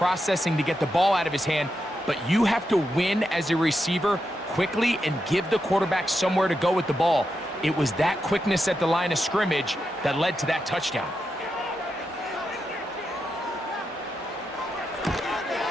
to get the ball out of his hand, but you have to win as a receiver quickly and give the quarterback somewhere to go with the ball. It was that quickness at the line of scrimmage that led to that touchdown.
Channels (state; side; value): normal; both; correlation 0.86